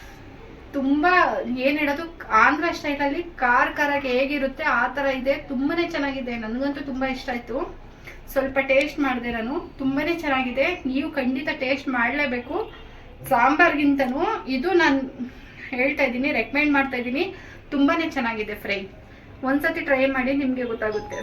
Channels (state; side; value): identical; both; correlation 1.00